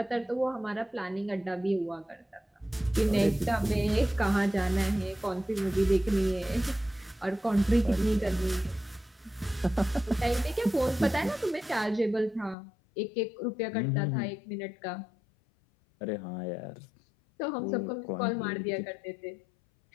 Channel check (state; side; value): drops out; right; at 12.6 s